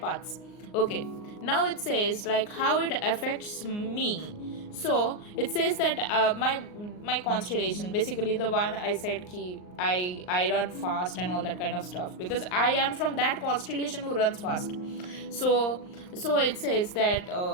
Okay, now it says like how it affects me. So it says that my constellation, basically the one I said ki I run fast and all that kind of stuff, because I am from that constellation who runs fast. So it says that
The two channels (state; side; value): late; right; 39 ms